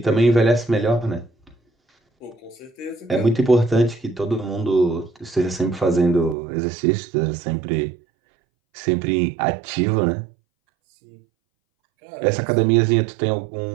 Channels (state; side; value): drops out; left; at 6.4 s